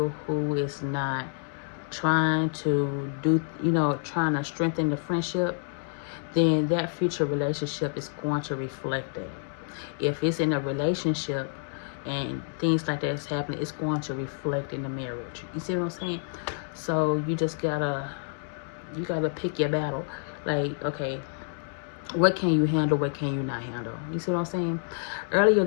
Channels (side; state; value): right; silent; digital silence